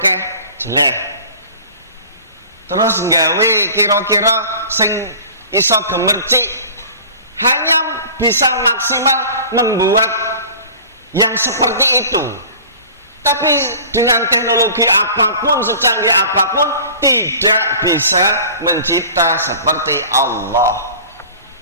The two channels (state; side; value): inverted; both; correlation -0.42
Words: jelek. Terus nggawe kira-kira sing iso gemercik hanya bisa maksimal membuat yang seperti itu. Tapi dengan teknologi apapun, secanggih apapun, tidak bisa mencipta seperti Allah.